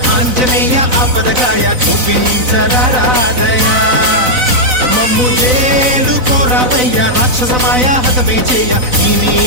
ఆంజనేయ ఆపదగాయ చూపించరాదయా మమ్ము చేరుకోరావయ్య రాక్షసమాయ హతమే చేయ ఈ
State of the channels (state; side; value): late; left; 4.0 ms